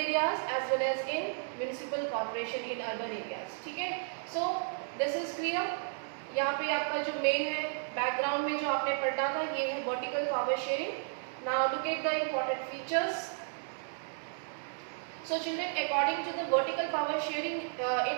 areas as well as in municipal corporation in urban areas. ठीक है? So this is clear. यहाँ पे आपका जो main है background में जो आपने पढ़ा था ये है vertical power sharing. Now look at the important features. So children, according to the vertical power sharing,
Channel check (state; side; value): silent; left; digital silence